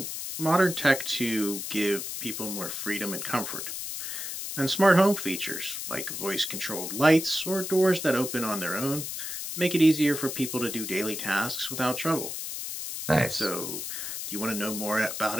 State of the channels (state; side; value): noise; left; hiss, 6 dB below the sound